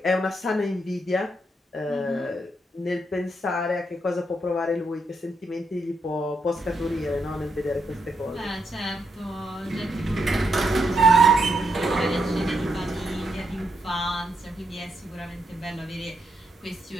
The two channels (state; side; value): normal; both; correlation 0.80